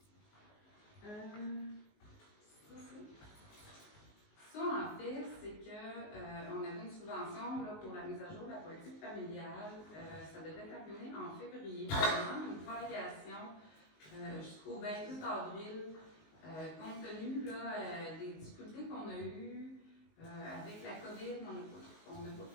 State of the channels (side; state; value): right; late; 19 ms